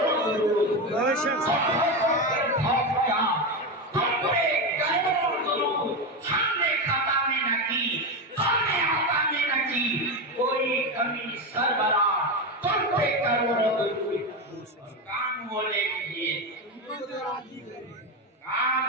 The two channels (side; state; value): both; normal; correlation 0.14